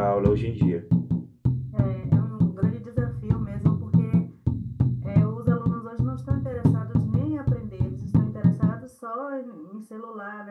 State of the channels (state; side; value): identical; both; correlation 1.00